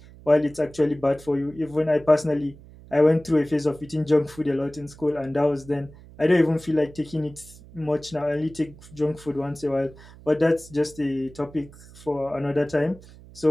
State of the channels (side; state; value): right; noise; hum, 21 dB below the sound